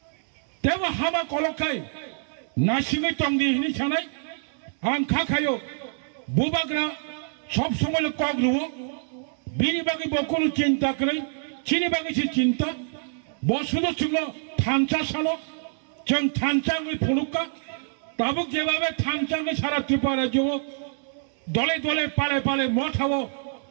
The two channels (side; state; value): left; silent; digital silence